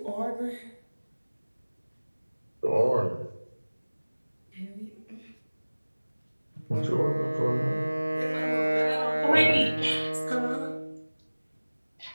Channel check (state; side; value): inverted; both; correlation -1.00